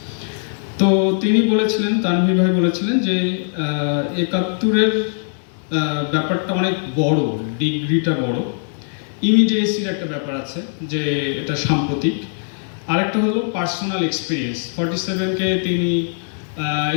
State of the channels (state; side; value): silent; right; 66 dB below the other